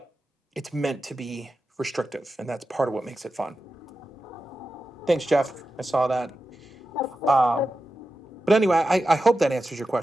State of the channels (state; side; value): normal; both; correlation 0.91